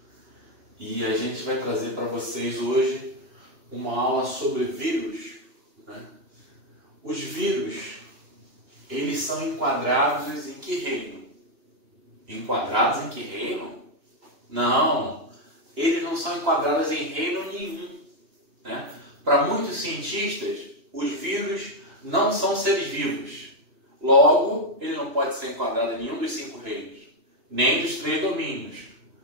e a gente vai trazer para vocês hoje uma aula sobre vírus, né? Os vírus, eles são enquadrados em que reino? Enquadrados em que reino? Não, eles não são enquadrados em reino nenhum, né? Para muitos cientistas, os vírus não são seres vivos. Logo, ele não pode ser enquadrado em nenhum dos 5 reinos, nem dos 3 domínios.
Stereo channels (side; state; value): left; late; 2.9 ms